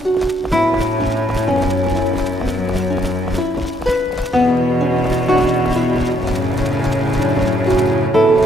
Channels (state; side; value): normal; both; correlation 0.71